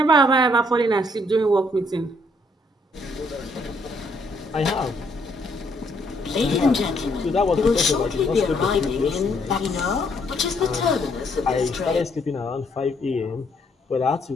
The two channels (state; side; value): normal; both; correlation 0.70